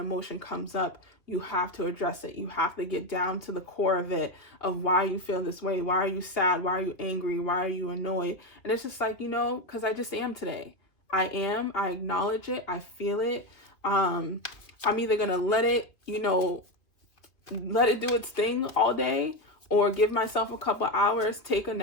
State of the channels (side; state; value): right; late; 2.2 ms